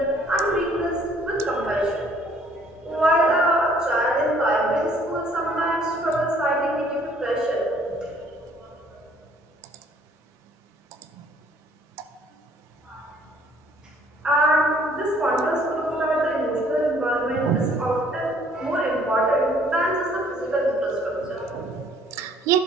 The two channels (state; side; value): normal; both; correlation 0.60